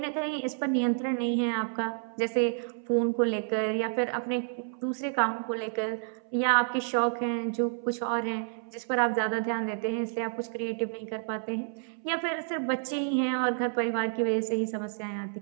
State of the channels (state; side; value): silent; left; 58 dB below the other